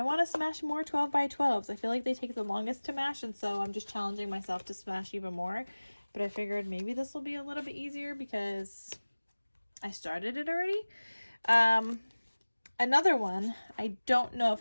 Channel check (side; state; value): both; inverted; correlation -1.00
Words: want to smash more 12 by 12s. I feel like they take the longest to mash, and so I'm just challenging myself to smash even more. But I figured maybe this will be a little bit easier because I started it already. Another one, I don't know if